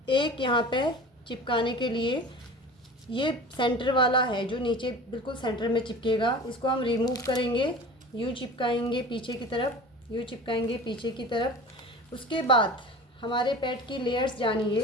एक यहाँ पे चिपकाने के लिए ये सेंटर वाला है जो नीचे बिल्कुल सेंटर में चिपकेगा। इसको हम रिमूव करेंगे, यूँ चिपकाएंगे पीछे की तरफ, यूँ चिपकाएंगे पीछे की तरफ। उसके बाद हमारे पैड की लेयर्स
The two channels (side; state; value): both; normal; correlation 0.38